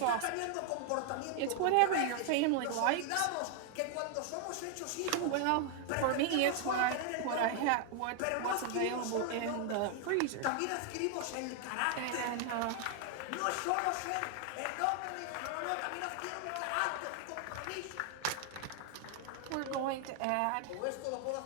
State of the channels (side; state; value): both; different; correlation 0.00